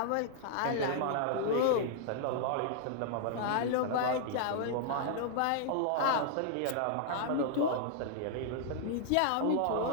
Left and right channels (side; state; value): both; different; correlation -0.01